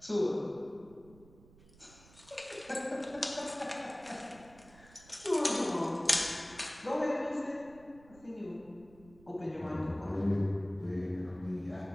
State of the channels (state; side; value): noise; right; rumble, 23 dB below the sound